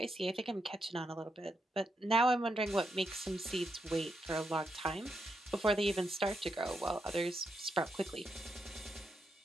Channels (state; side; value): normal; both; correlation 0.82